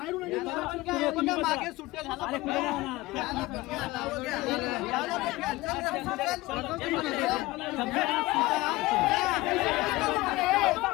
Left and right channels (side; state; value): right; quieter; 19.7 dB